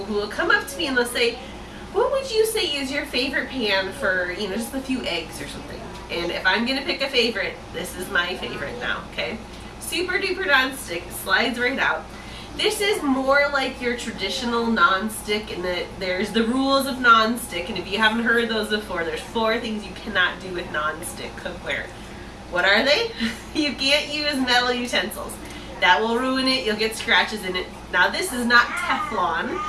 who will come up to me and they'll say, what would you say is your favorite pan for, just a few eggs or something? And if I'm going to pick a favorite, this is my favorite now, okay? Super duper non-stick, slides right out. This is more like your traditional non-stick in that there's the rules of non-stick, and if you haven't heard those before, there's 4 things you cannot do with non-stick cookware. What are they? You can't use metal utensils. That will ruin it, you'll get scratches in it. Now this is not Teflon.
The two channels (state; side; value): identical; both; correlation 1.00